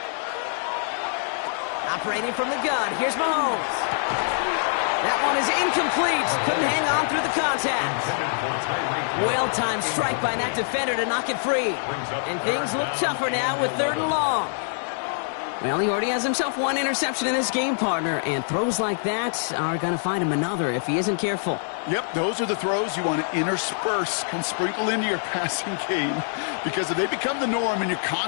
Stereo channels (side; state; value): right; silent; digital silence